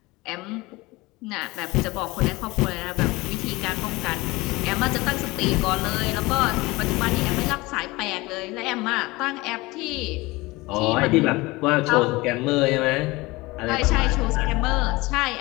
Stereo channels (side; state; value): right; quieter; 22.0 dB